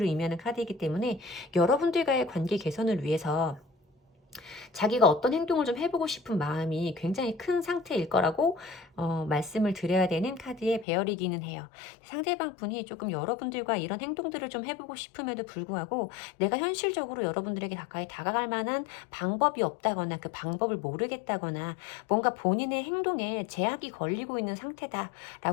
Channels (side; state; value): right; drops out; at 10.9 s